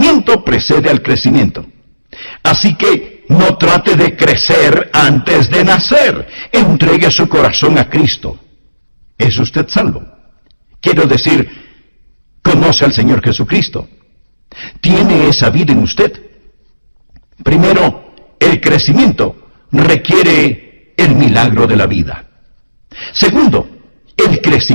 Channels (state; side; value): inverted; both; correlation -1.00